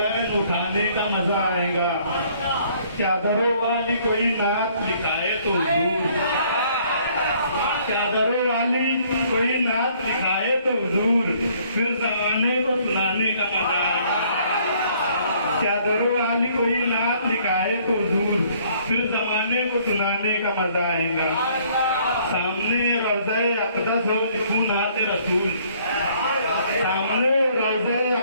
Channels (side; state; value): both; inverted; correlation -0.62